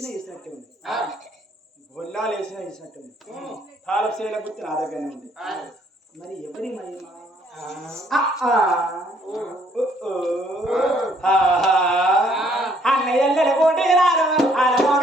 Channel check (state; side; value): normal; both; correlation 0.64